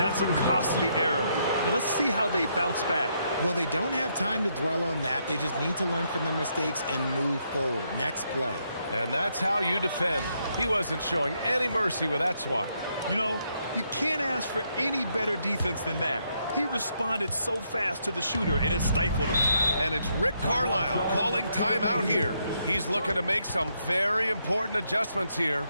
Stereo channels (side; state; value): both; inverted; correlation -0.76